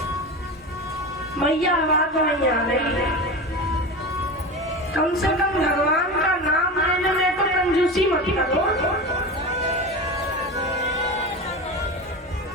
मैया आवाज नहीं आ रही है। कम से कम भगवान का नाम लेने में तो कंजूसी मत करो।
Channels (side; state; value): both; normal; correlation 0.26